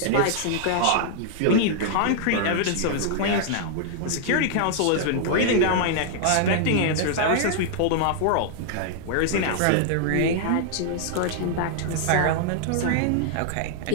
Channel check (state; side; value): different; both; correlation -0.01